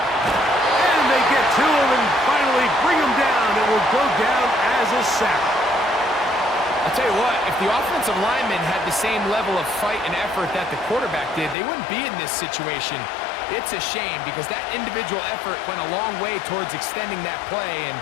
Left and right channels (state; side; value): drops out; right; at 11.6 s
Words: they get to him and finally bring him down. It will go down as a sack. I'll tell you what, if the offensive lineman had the same level of fight and effort that the quarterback did, they wouldn't be in this situation. It's a shame because that individual effort went a long way towards extending that play, and